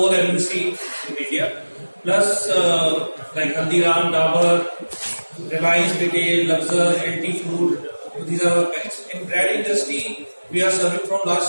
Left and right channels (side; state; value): both; inverted; correlation -1.00